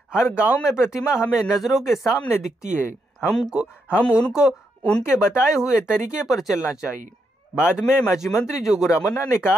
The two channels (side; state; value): both; normal; correlation 0.80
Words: गांव में प्रतिमा हमें नजरों के सामने दिखती है। हम उनको उनके बताए हुए तरीके पर चलना चाहिए। बाद में माजी मंत्री जोगू रामन्ना ने